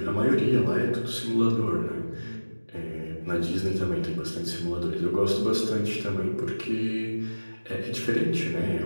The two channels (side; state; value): both; inverted; correlation -1.00